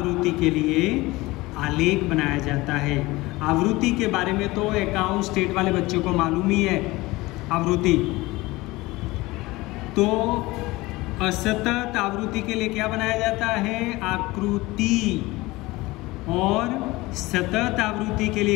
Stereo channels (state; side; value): quieter; right; 20.6 dB